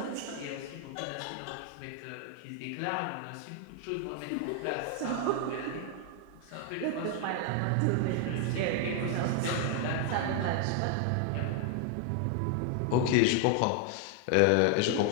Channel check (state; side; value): different; both; correlation 0.00